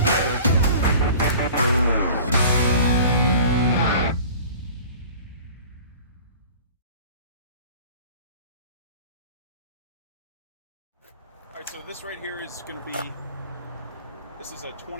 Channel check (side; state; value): both; inverted; correlation -0.44